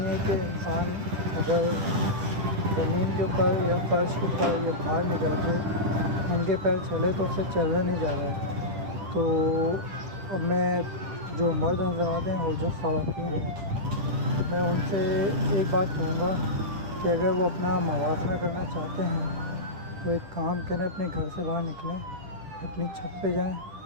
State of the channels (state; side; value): late; left; 10 ms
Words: ہے کہ انسان اگر زمین کے اوپر یا فرش کے اوپر یا باہر نکل کے ننگے پیر چلے تو اس سے چلا نہیں جا رہا ہے. تو اب میں جو مرد حضرات ہیں اور جو خواتین ہیں میں ان سے ایک بات کہوں گا کہ اگر وہ اپنا موازنہ کرنا چاہتے ہیں تو ایک کام کریں، اپنے گھر سے باہر نکلیں، اپنی چھت پہ جائیں،